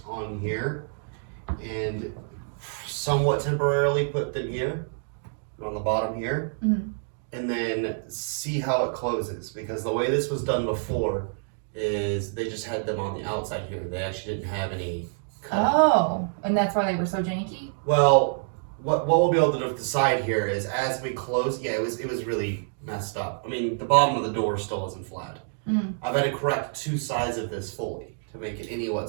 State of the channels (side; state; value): left; silent; digital silence